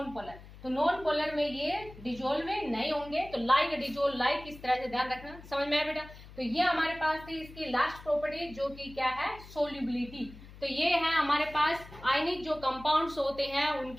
polar. तो नॉन पोलर में ये डिजोल्व नहीं होंगे। तो लाइक डिजोल्व लाइक, इस तरह से ध्यान रखना। समझ में आया बेटा? तो ये हमारे पास थी इसकी लास्ट प्रॉपर्टी जो कि क्या है? सोल्यूबिलिटी। तो ये है हमारे पास आयनिक जो कंपाउंड्स होते हैं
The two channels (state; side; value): noise; left; hum, 18 dB below the sound